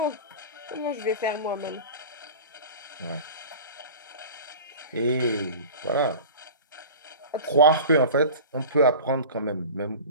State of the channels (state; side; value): inverted; both; correlation -0.35